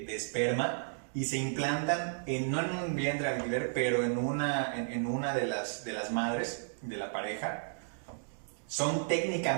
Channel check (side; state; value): left; silent; digital silence